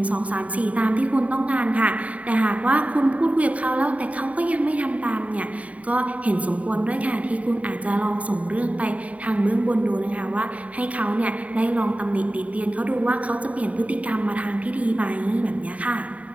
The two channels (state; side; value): late; left; 0.068 ms